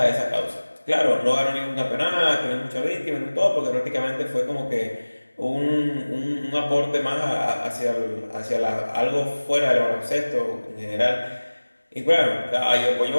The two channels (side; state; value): both; inverted; correlation -1.00